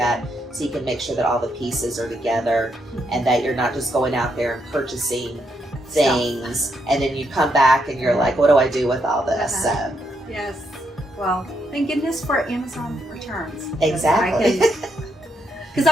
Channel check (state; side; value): normal; both; correlation 0.78